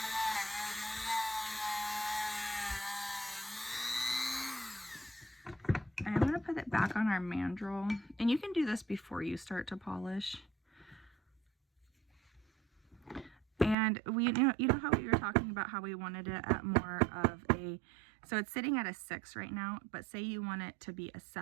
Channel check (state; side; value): drops out; left; at 13.8 s